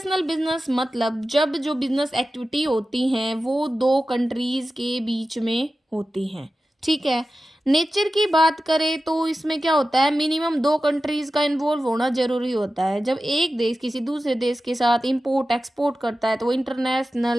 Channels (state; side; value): normal; both; correlation 0.94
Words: बिजनेस मतलब जब जो बिजनेस एक्टिविटी होती हैं वो दो कंट्रीज के बीच में होती हैं, ठीक है। नेचर की बात करें तो इसमें क्या होता है, मिनिमम दो कंट्रीज का इन्वॉल्व होना जरूरी होता है। जब एक देश किसी दूसरे देश के साथ इंपोर्ट एक्सपोर्ट करता है तो वो